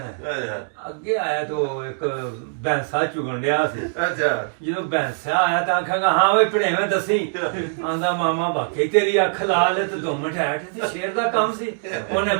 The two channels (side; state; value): left; silent; digital silence